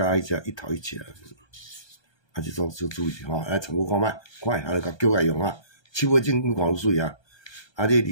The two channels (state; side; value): late; right; 1.2 ms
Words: 迄只1头1切啊，这种就注意吼，来参考看卖，快，就甲叫来用啊。7尾真看有水啊，这